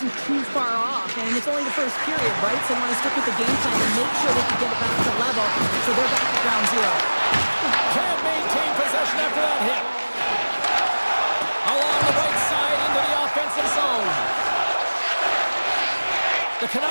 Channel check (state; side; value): inverted; both; correlation -1.00